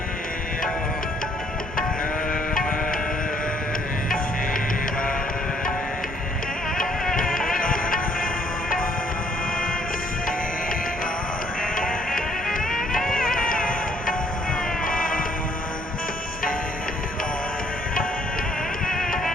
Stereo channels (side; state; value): both; normal; correlation 0.65